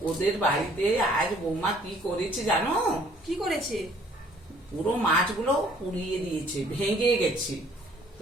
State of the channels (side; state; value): both; normal; correlation 0.59